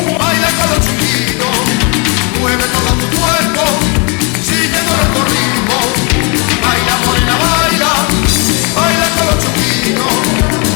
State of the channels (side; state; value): right; quieter; 32.9 dB